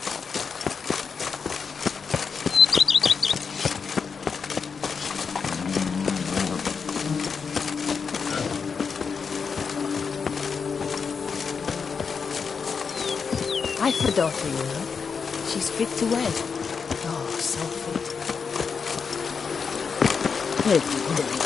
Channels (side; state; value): right; quieter; 5.7 dB